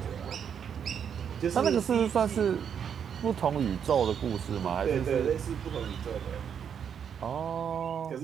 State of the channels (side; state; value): left; quieter; 7.9 dB